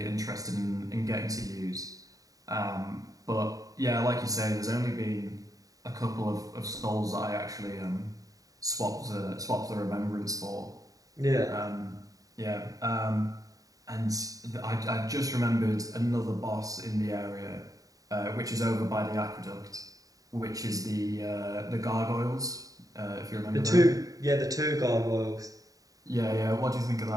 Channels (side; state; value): left; late; 0.17 ms